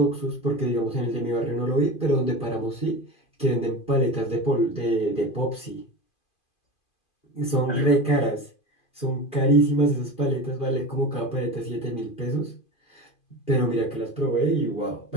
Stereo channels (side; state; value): right; late; 2.5 ms